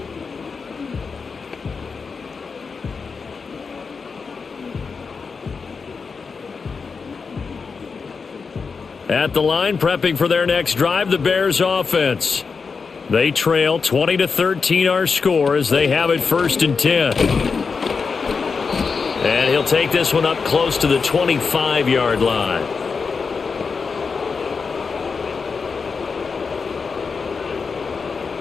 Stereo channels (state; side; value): quieter; right; 5.1 dB